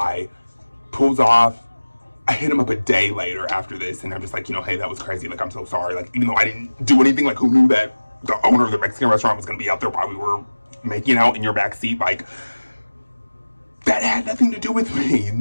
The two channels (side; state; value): both; inverted; correlation -1.00